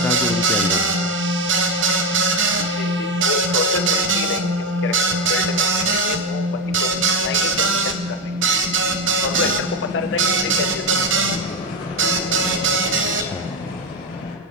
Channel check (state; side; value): normal; both; correlation 0.13